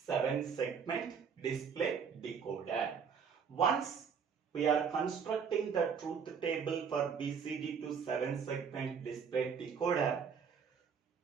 segment display decoder. Once we are constructing the truth table for BCD to 7 segment display decoder,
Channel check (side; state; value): left; quieter; 6.6 dB